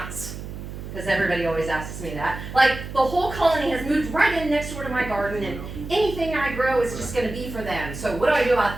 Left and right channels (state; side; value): noise; right; hum, 10 dB below the sound